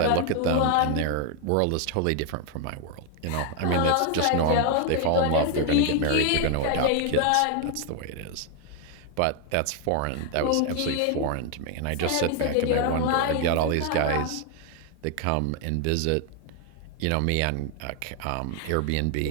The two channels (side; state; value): both; different; correlation 0.00